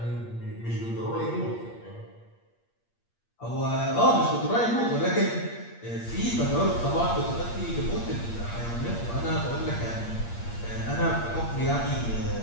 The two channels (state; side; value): late; right; 8.6 ms